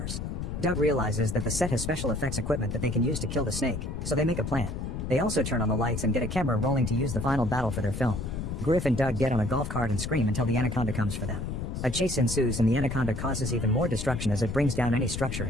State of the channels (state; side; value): noise; left; rumble, 5 dB below the sound